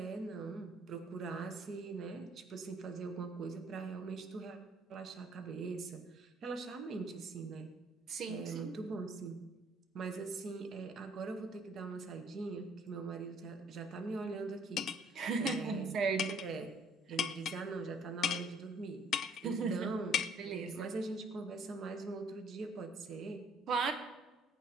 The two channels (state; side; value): normal; both; correlation 0.60